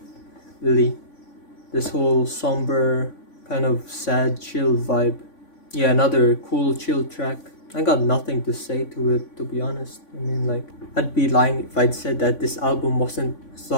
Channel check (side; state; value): right; late; 3.5 ms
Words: really. This whole somber, kind of sad, chill vibe. Yeah, another cool, chill track. I got nothing to say to it, to be honest. I mean, like, I'd be lying if I'd said that this album wasn't